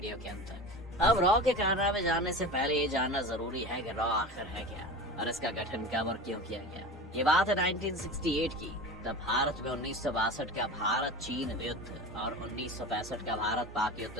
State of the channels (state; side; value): normal; both; correlation 0.31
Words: के अंत तक। अब रॉ के कारनामे जानने से पहले ये जानना जरूरी है कि रॉ आखिर है क्या और इसका गठन कब और क्यों किया गया। ये बात है 1968 की। तब भारत में 1962 का भारत चीन युद्ध और 1965 का भारत पाक युद्ध